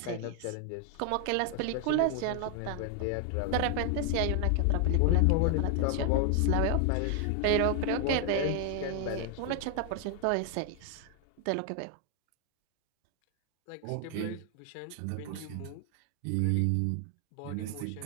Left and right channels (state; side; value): different; both; correlation 0.00